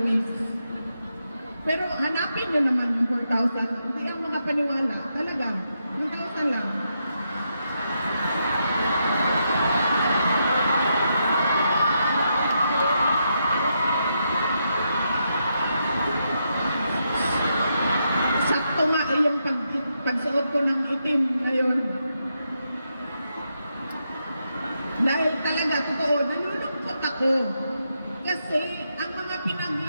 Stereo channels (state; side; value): inverted; both; correlation -0.82